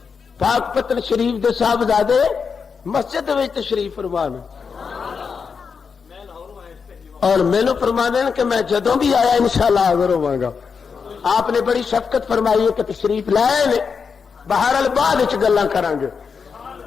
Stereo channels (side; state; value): right; quieter; 5.8 dB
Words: پاک پتن شریف دے صاحبزادے مسجد وچ تشریف فرمان، اور مینوں فرمانے کہ میں جدوں بھی آیا انشاءاللہ حاضر ہوں گا۔ آپ نے بڑی شفقت فرمائی ہے کہ تشریف لائے نے، بہرحال بعد وچ گلاں کران گے،